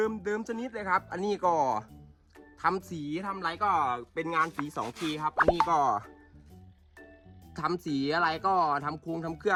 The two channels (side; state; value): both; identical; correlation 1.00